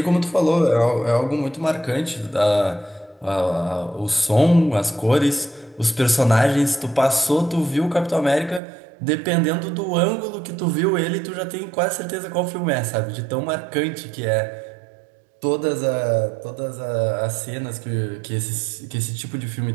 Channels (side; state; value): left; drops out; at 8.6 s